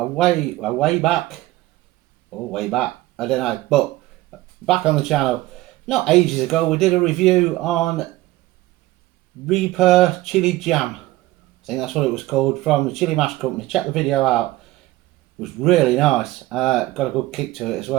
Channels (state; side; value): quieter; left; 17.7 dB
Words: way back, I don't know, but back on the channel, not ages ago, we did a review on Reaper Chili Jam. I think that's what it was called, from the Chili Mash Company. Check the video out. It was really nice. Got a good kick to it as